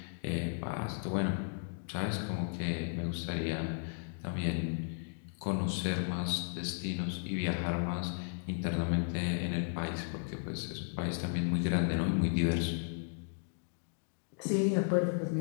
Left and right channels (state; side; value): silent; right; digital silence